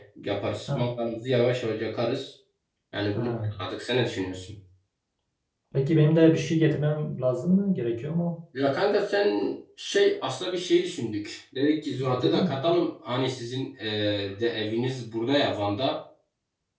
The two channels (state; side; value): identical; both; correlation 1.00